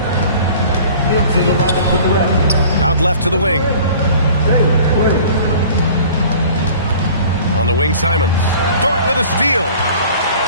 Out left to the wing. On the wing, Simons. Dort with a steal.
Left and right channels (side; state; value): both; inverted; correlation -0.46